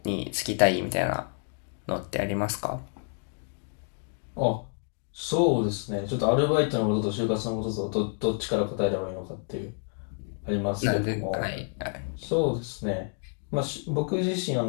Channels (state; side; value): silent; right; 59 dB below the other